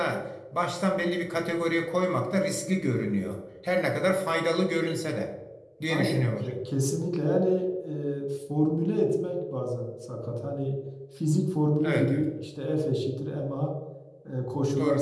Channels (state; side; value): identical; both; correlation 1.00